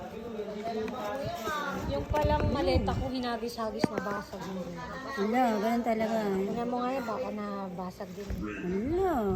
Yung palang maleta ko, hinagis-hagis na basag mo rin. Wala, ganun talaga. Tingnan mo nga yun, baka nabasag din.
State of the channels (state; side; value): identical; both; correlation 1.00